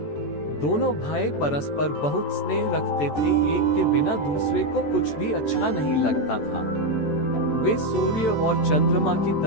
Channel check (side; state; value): right; late; 14 ms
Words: दोनों भाई परस्पर बहुत स्नेह रखते थे। एक के बिना दूसरे को कुछ भी अच्छा नहीं लगता था। वे सूर्य और चंद्रमा की